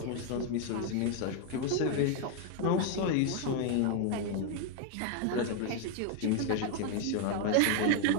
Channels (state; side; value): different; both; correlation 0.00